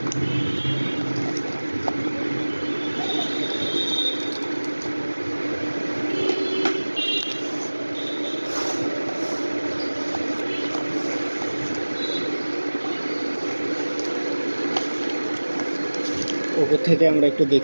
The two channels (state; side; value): inverted; both; correlation -1.00